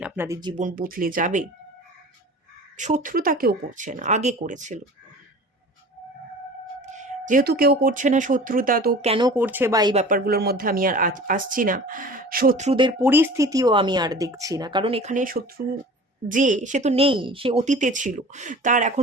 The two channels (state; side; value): normal; both; correlation 0.41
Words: আপনাদের জীবন বদলে যাবে। শত্রুতা কেউ করছে না, আগে করেছিল, যেহেতু কেউ করছে না শত্রুতা, তো কেন করছে বা এই ব্যাপারগুলোর মধ্যে আমি আর আসছি না। শত্রুদের পরিস্থিতিও আমি আর দেখছি না, কারণ এখানে শত্রু যে, সে তো নেই, সে অতীতে ছিল, তার